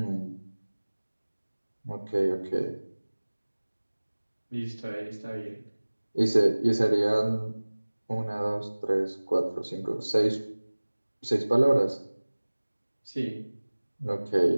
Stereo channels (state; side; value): inverted; both; correlation -1.00